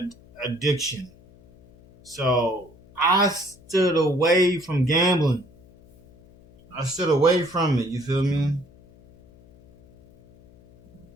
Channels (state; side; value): noise; left; hum, 26 dB below the sound